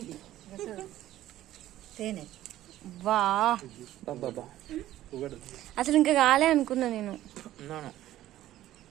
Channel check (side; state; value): left; quieter; 13.9 dB